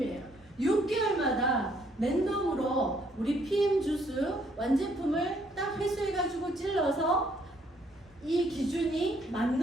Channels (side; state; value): both; normal; correlation 0.67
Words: 6개월마다 랜덤으로 우리 PM 주스 완제품을 딱 회수해가지고 찔러서 이 기준이